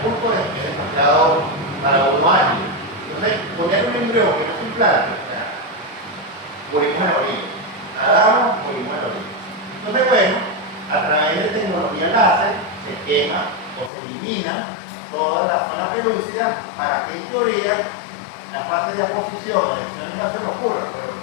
es demasiado para uno año. Entonces, poner un embrión que no se implante, morimos en la orilla. Nadamos, morimos en la orilla. Entonces, bueno, a través de tecnología láser se quema o se elimina toda la zona pelúcida para que en teoría la fase de aposición, de la no ocurra, pero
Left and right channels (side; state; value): right; drops out; at 13.9 s